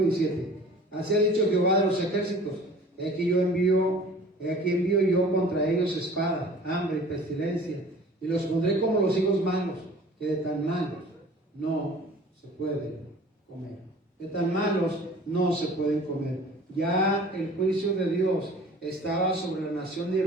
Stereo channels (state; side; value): normal; both; correlation 0.46